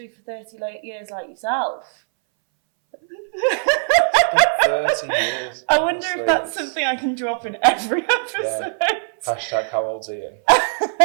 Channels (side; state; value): left; silent; 64 dB below the other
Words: for 30 years like yourself. 30 years. I wonder if that's something I can drop in every episode. Yeah. Hashtag how old's Ian?